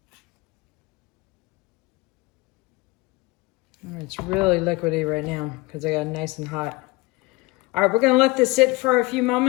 It's really liquidy right now because I got it nice and hot. All right, we're gonna let this sit for a few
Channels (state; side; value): quieter; right; 23.5 dB